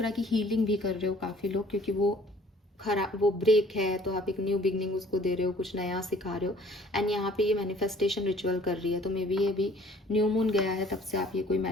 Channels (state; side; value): normal; both; correlation 0.55